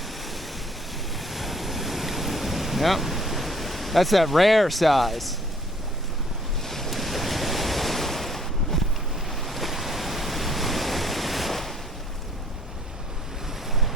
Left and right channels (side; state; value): both; normal; correlation 0.60